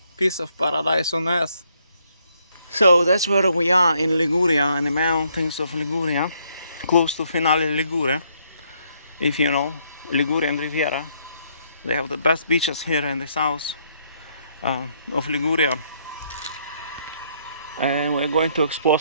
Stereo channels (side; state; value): both; inverted; correlation -0.71